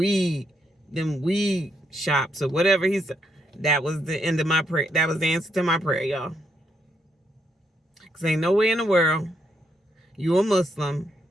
shops or whatever. He said. That was the end of my prayer. That was the answer to my prayer, y'all. Because ain't no way in the world you a Muslim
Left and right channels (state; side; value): normal; both; correlation 0.77